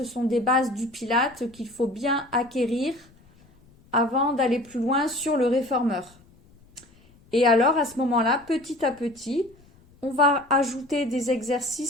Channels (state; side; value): noise; left; rumble, 29 dB below the sound